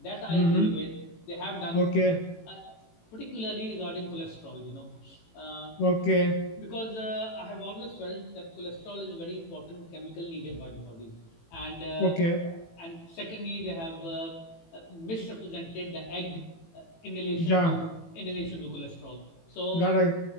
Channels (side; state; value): right; late; 18 ms